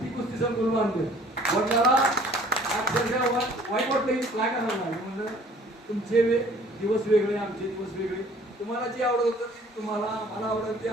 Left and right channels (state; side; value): normal; both; correlation 0.54